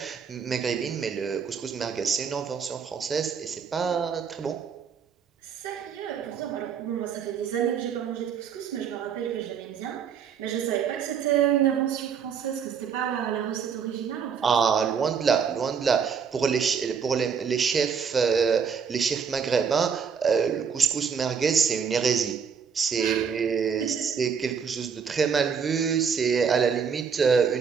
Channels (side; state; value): left; quieter; 6.7 dB